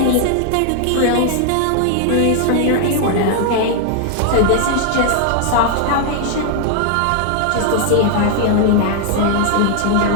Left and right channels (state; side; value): different; both; correlation 0.00